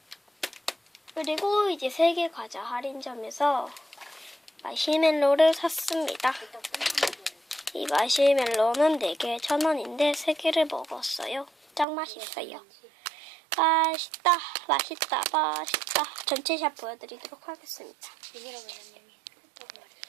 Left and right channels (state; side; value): drops out; left; at 11.9 s